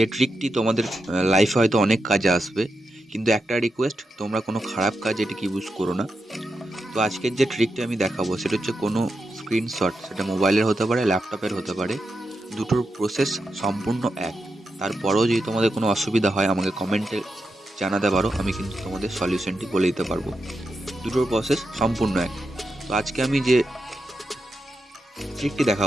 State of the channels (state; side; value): normal; both; correlation 0.87